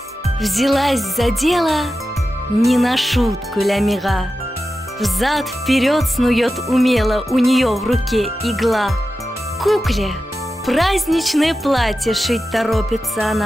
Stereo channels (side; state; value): both; normal; correlation 0.92